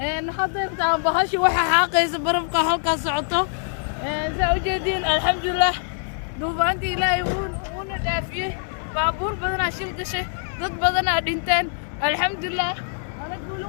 نحضر تاع بهاشي وحا حاقيس برمقة هلكا سعطة ساوجدين الحمد لله دوبانتي لا يكون دافيه بابور بدنا شيل قشة ضد بدنا دينتين الحمد لله أنا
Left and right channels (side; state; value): right; silent; digital silence